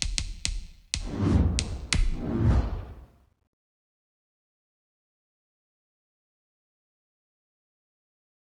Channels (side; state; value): both; identical; correlation 1.00